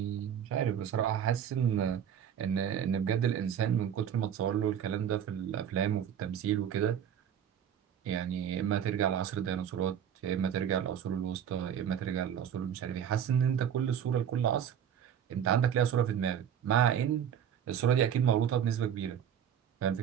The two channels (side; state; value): left; quieter; 9.0 dB